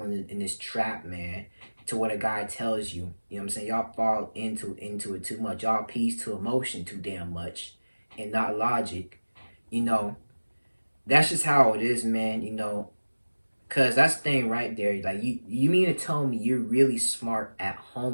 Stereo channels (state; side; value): inverted; both; correlation -1.00